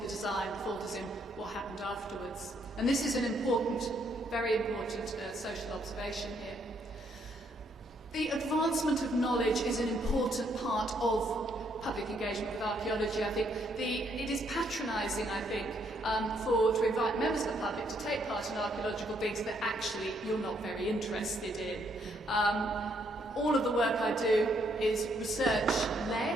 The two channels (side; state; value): both; normal; correlation 0.72